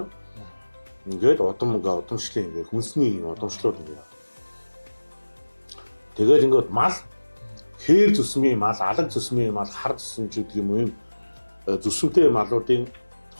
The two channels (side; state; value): both; inverted; correlation -1.00